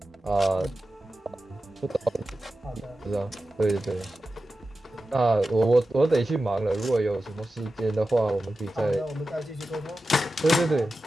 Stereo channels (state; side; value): normal; both; correlation 0.93